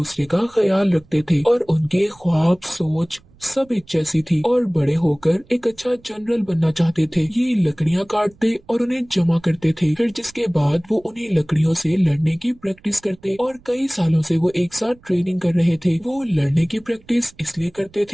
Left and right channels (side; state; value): right; noise; rumble, 28 dB below the sound